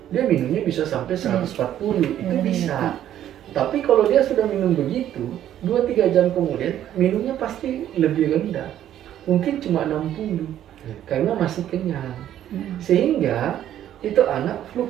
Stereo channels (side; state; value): left; quieter; 11.4 dB